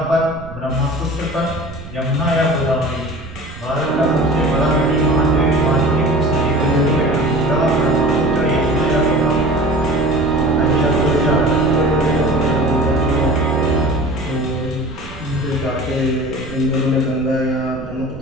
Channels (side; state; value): right; noise; rumble, 16 dB below the sound